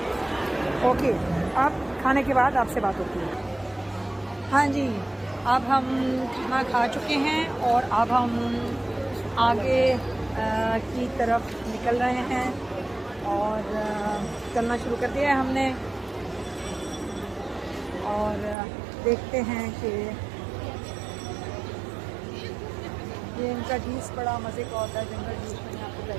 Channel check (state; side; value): drops out; left; at 18.6 s